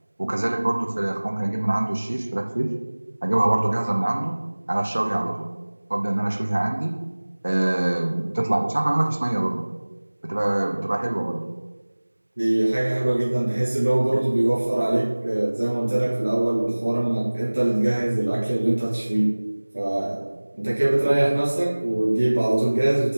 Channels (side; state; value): both; inverted; correlation -1.00